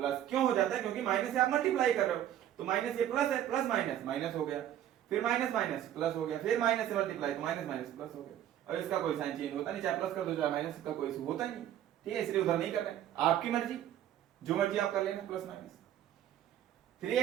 क्यों हो जाता है? क्योंकि माइनस से आप मल्टीप्लाई कर रहे हो, तो माइनस ये प्लस है, प्लस माइनस माइनस हो गया, फिर माइनस माइनस प्लस हो गया, फिर माइनस से मल्टीप्लाई तो माइनस माइनस प्लस हो गया। और इसका कोई साइन चेंज होता नहीं, चाहे प्लस कर दो चाहे माइनस, का कोई होता ही नहीं। ठीक है, इसलिए उधर नहीं कर रहे, आपकी मर्जी, जो मर्जी आप कर लेना, प्लस माइनस।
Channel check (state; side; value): quieter; left; 11.4 dB